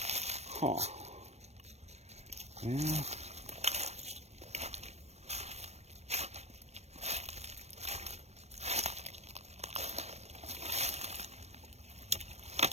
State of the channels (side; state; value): left; late; 0.31 ms